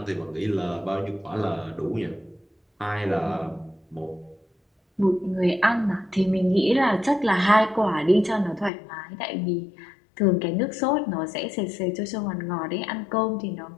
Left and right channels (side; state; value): right; drops out; at 8.7 s